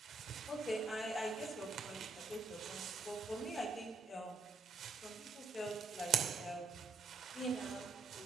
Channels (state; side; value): quieter; left; 4.0 dB